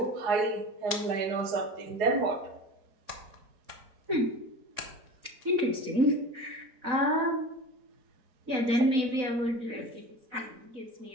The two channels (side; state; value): left; late; 4.0 ms